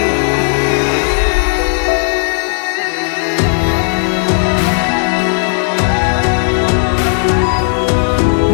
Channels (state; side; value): silent; right; digital silence